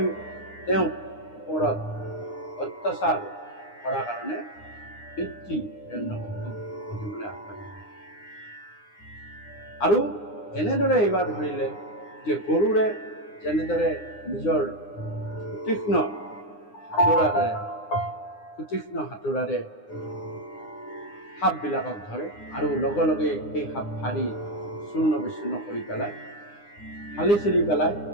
তেওঁ ওপৰত অত্যাচাৰ কৰাৰ কাৰণে পিতৃ হিৰণ্যকশিপুক বধিবলৈ আগবাঢ়িলে। আৰু এনেদৰে এইবাৰ ধৰিলে যে গৰুৰে যেনেদৰে নিজৰ সুতীক্ষ্ণ হাতোৰাৰে সাপবিলাকক ধৰে আৰু লগে লগে সেই সাপ ফাৰি চূৰ্ণ বিচূৰ্ণ কৰি পেলায়, ফালি চিৰি পেলায়,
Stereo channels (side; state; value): right; late; 9.8 ms